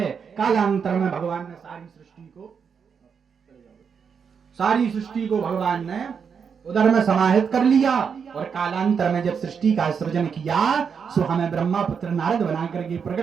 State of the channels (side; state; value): left; quieter; 6.5 dB